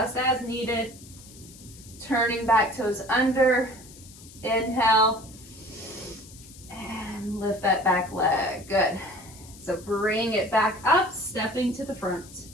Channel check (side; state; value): left; noise; hiss, 20 dB below the sound